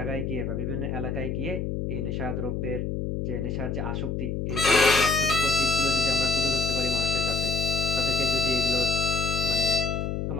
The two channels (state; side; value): noise; left; hum, 2 dB below the sound